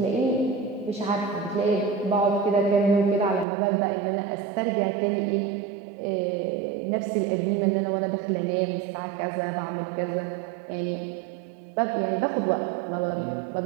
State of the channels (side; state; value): left; drops out; at 3.5 s